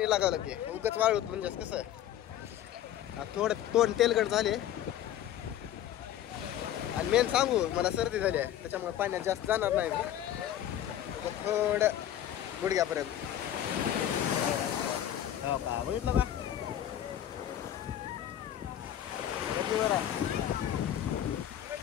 लागावं लागते, उगाच वाळूत म्हणजे कसं आहे, थोडं तोंड तेलगट झाले आणि मेन सांगू मला सर्दी झाली आहे, त्याच्यामुळे पाण्यात जास्त जाणार नाही मी, थोडं गुडघ्यापर्यंत। हो का, बघितलं का बरं आहे।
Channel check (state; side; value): quieter; right; 11.3 dB